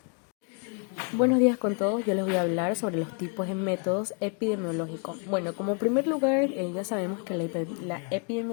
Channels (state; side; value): quieter; right; 38.0 dB